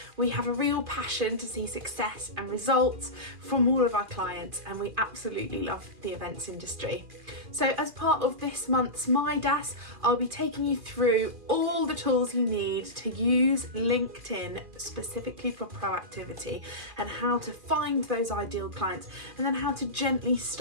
We have a real passion to see success and results from all of our clients, and we absolutely love the events industry. So as part of this month's Midas, I'll be taking you through all the tools you need to use LinkedIn specifically for proactivity, and how to find those ideal clients, and then how to gently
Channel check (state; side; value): late; left; 2.4 ms